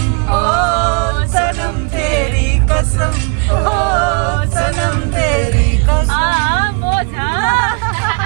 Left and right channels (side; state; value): left; quieter; 35.5 dB